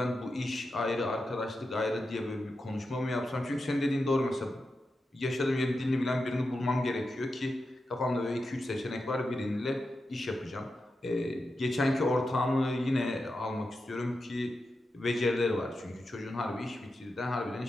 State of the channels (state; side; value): normal; both; correlation 0.89